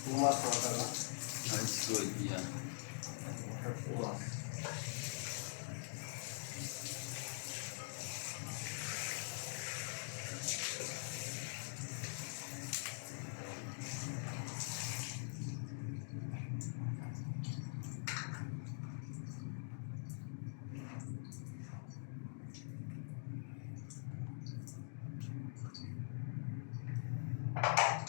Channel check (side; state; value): right; silent; digital silence